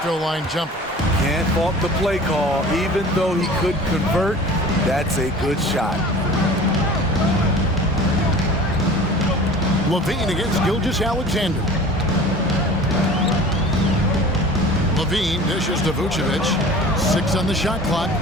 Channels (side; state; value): both; normal; correlation 0.42